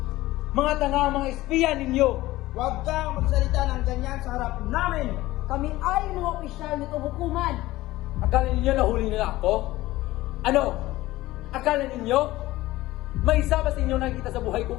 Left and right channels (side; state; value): right; quieter; 17.4 dB